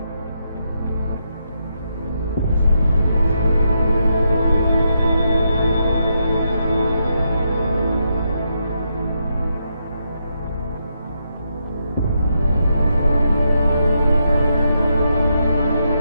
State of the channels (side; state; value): both; inverted; correlation -0.81